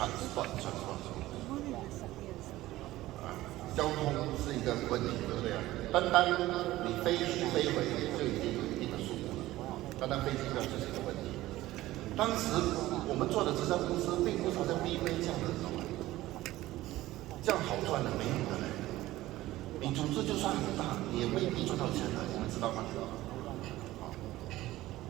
交通是一个问题，对不对啊？单你飞去飞回就已经有一定的数目了，单飞机票就是一个问题。当时我们做的直销公司并不是好像 BV 这样的，这样好赚的没有的嘞。你组织就算很大，你也未必赚到钱的，你们知道吗？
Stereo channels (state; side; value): quieter; left; 16.5 dB